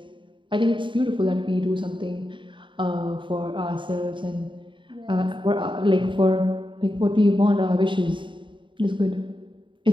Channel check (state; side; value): late; left; 0.24 ms